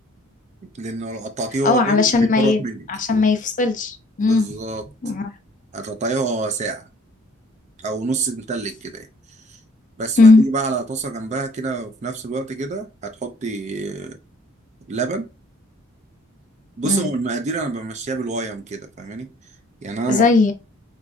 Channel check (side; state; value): both; normal; correlation 0.57